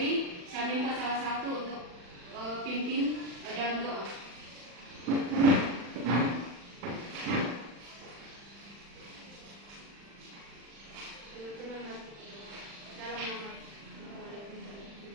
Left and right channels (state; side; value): late; left; 40 ms